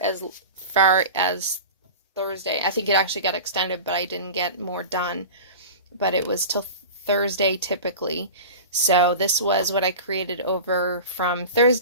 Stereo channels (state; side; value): inverted; both; correlation -0.33